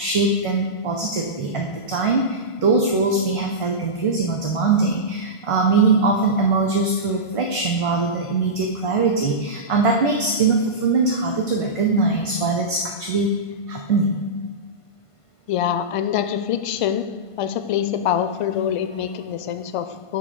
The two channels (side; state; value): right; late; 1.5 ms